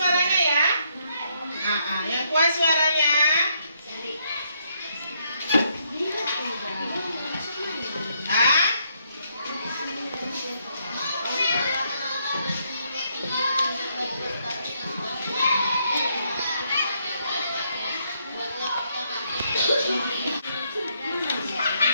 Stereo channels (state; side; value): inverted; both; correlation -0.74